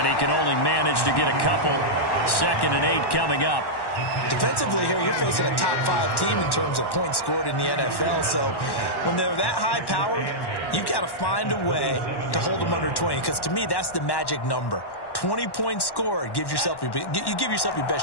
he can only manage to get a couple. 2nd and 8 coming up. Defensively here, you're facing a top 5 team in terms of points scored in the NFL. So when they're that high-powered, you've got to find a way to hold them under 20. Because to me, that's the magic number. 20 points scored, you give yourself your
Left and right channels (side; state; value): right; late; 1.1 ms